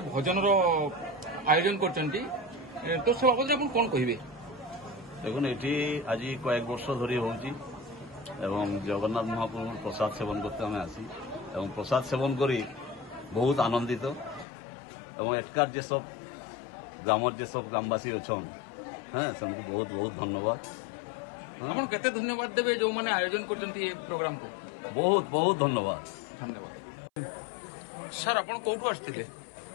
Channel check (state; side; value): drops out; right; at 14.5 s